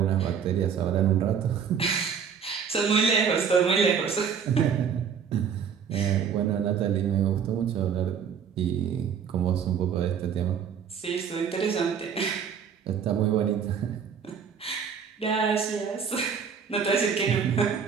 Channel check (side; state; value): left; quieter; 7.1 dB